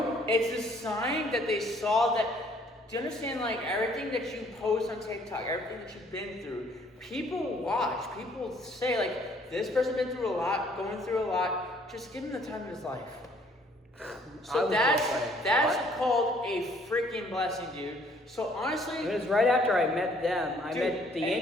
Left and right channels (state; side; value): normal; both; correlation 0.61